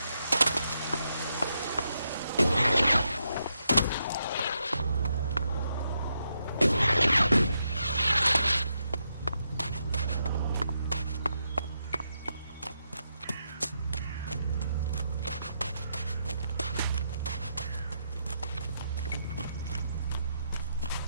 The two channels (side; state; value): both; inverted; correlation -0.81